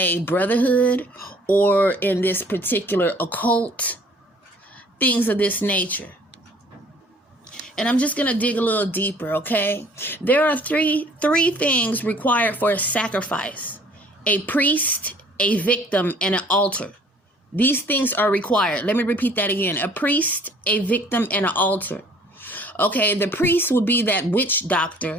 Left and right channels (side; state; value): both; normal; correlation 0.55